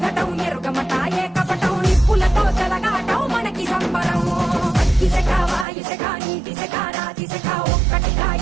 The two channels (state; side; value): drops out; left; at 5.7 s